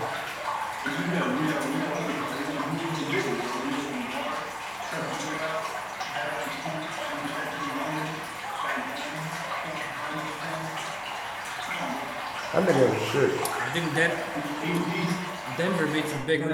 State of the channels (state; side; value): identical; both; correlation 1.00